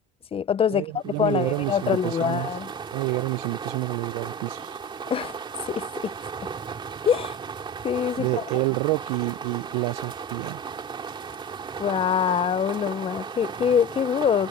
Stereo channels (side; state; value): both; normal; correlation 0.30